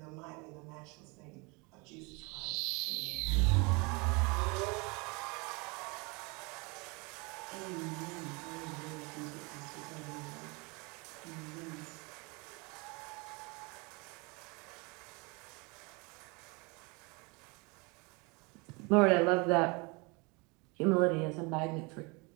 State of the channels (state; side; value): quieter; left; 28.7 dB